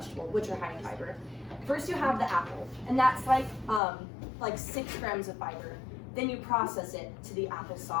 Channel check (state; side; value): drops out; right; at 3.8 s